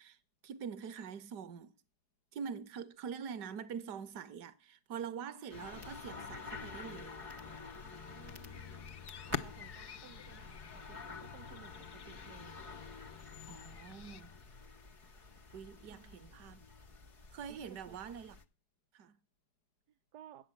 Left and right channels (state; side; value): late; left; 4.6 ms